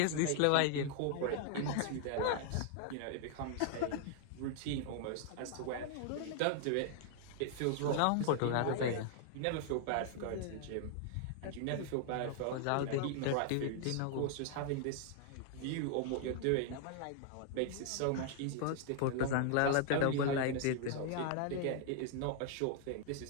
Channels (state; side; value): different; both; correlation 0.00